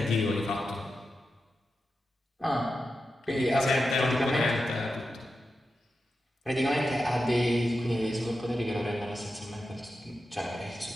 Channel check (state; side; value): normal; both; correlation 0.90